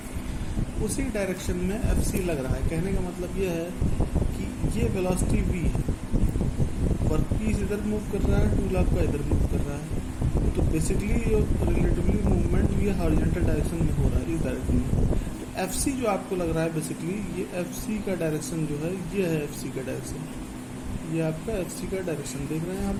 उसी डायरेक्शन में FC लग रहा है। कहने का मतलब ये है कि ये वेलोसिटी V है, वर्कपीस इधर मूव कर रहा है, टूल आपका इधर मूव कर रहा है। तो बेसिकली ये रिलेटिवली मूवमेंट ये हॉरिजॉन्टल डायरेक्शन में हो रहा है, इस डायरेक्शन में। तो FC जो आपको लग रहा है बेसिकली ये FC का डायरेक्शन जो है ये है FC का डायरेक्शन, ये आपका FC का डायरेक्शन देख रहे हैं यहाँ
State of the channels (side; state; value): both; identical; correlation 1.00